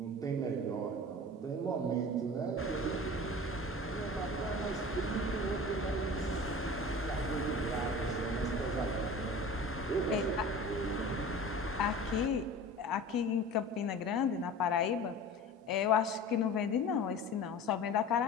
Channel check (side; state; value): both; normal; correlation 0.37